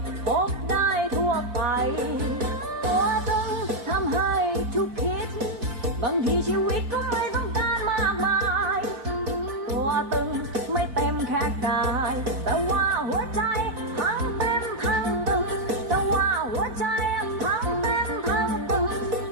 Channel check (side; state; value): left; late; 4.5 ms